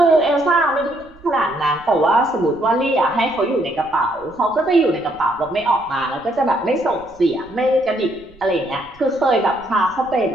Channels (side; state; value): right; noise; rumble, 26 dB below the sound